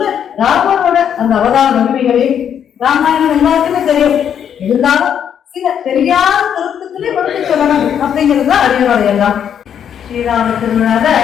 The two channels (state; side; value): quieter; right; 8.7 dB